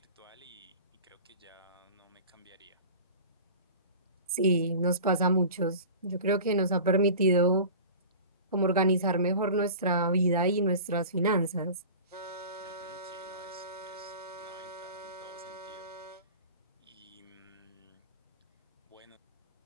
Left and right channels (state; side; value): inverted; both; correlation -0.37